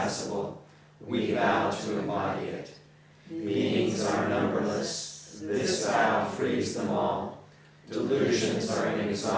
We vow to embody it. Beings are numberless. This vow frees them all. Delusions are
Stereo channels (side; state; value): both; identical; correlation 1.00